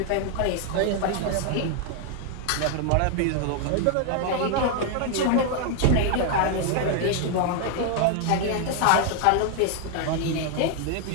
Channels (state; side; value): different; both; correlation 0.00